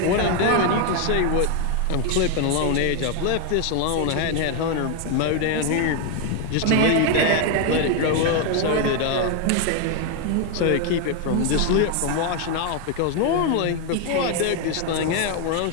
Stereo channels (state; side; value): different; both; correlation 0.01